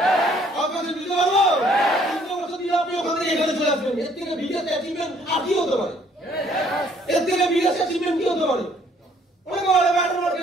আপনাকে দিতে পারবো? 3 বছর দিলে আপনি ওখান থেকে এখানে চলে আসবেন। এর থেকে বিগেস্ট অ্যাচিভমেন্ট আর কি হতে পারে? এর থেকে বিগেস্ট অ্যাচিভমেন্ট কি হতে পারে? অনেকে বলে ব্যাটার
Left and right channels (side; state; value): both; normal; correlation 0.62